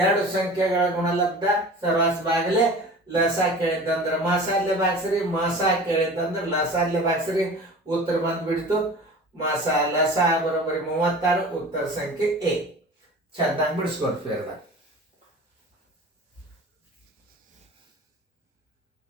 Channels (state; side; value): normal; both; correlation 0.39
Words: ಎರಡು ಸಂಖ್ಯೆಗಳ ಗುಣಲಬ್ಧ ಸರ್ವಾಸ ಬಾಗಿಲೆ ಲಸ ಕೇಳಿದ್ದಂದ್ರೆ ಮಾಸಾಲೆ ಬಾಕ್ಸ್ರಿ, ಮಾಸ ಕೇಳಿದ್ದಂದ್ರೆ ಲಸಾಲೆ ಬಾಕ್ಸ್ರಿ. ಉತ್ತರ ಬಂದ್ಬಿಡ್ತು ಮಾಸ ಲಸ ಬರೋಬ್ಬರಿ 36. ಉತ್ತರ ಸಂಖ್ಯೆ ಎ. ಚೆನ್ನಾಗಿ ಬಿಡಿಸ್ಕೊಡ್ತೀವಿ.